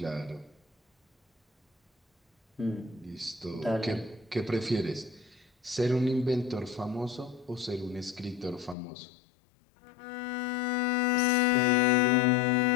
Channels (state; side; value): drops out; right; at 8.8 s